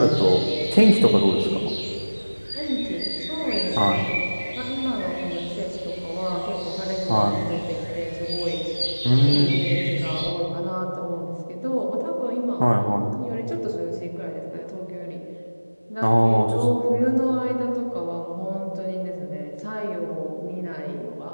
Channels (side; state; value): both; inverted; correlation -1.00